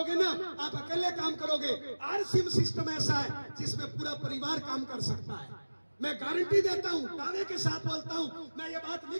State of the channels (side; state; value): both; inverted; correlation -1.00